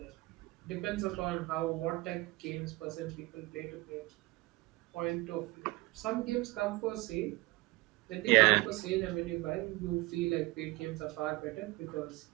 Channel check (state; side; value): quieter; left; 21.6 dB